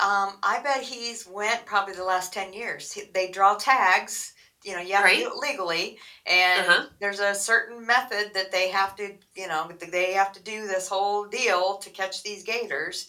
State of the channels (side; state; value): both; identical; correlation 1.00